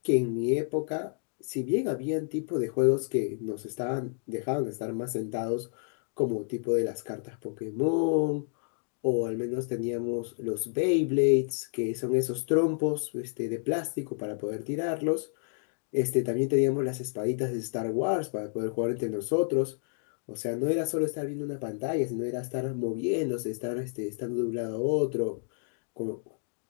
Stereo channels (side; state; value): right; silent; digital silence